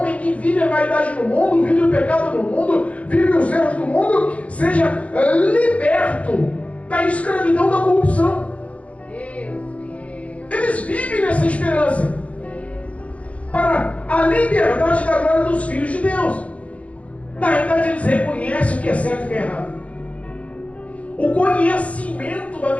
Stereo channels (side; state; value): right; late; 0.065 ms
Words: que vive a vaidade no mundo, vive o pecado no mundo, vive os erros do mundo, seja liberto da escravidão da corrupção. Eles vivem nessa esperança para a liberdade da glória dos filhos de Deus. Na realidade, eles reconhecem o que é certo e o que é errado. O conhecimento da